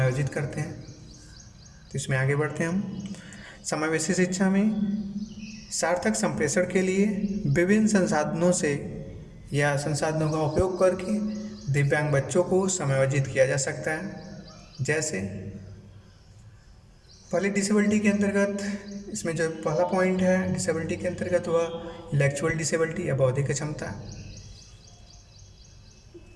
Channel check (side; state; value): both; identical; correlation 1.00